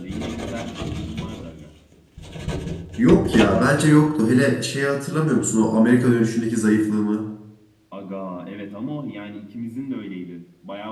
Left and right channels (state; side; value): identical; both; correlation 1.00